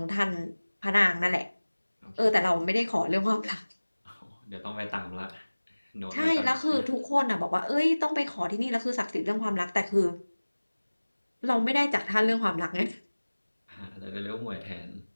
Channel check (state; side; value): inverted; both; correlation -1.00